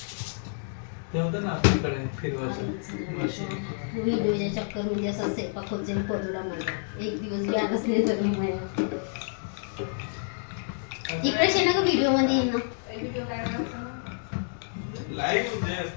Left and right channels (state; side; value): silent; right; digital silence